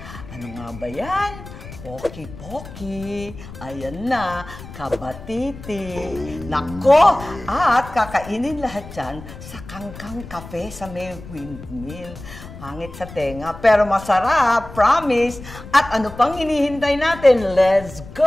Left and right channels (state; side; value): noise; left; rumble, 14 dB below the sound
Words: ano nga ba yan? Poki-poki, ayan na, kabatiti. Nako! At kakainin lahat yan sa Kangkang Cafe sa may windmill. Pangit sa tenga, pero masarap, promise. At ano pang hinihintay natin? Let's